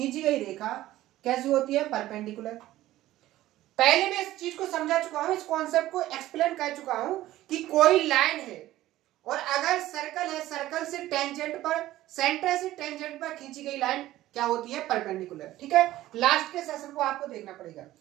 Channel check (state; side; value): quieter; left; 15.2 dB